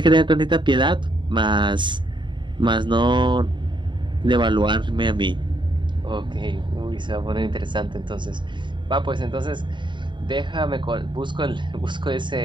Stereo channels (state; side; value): late; left; 0.23 ms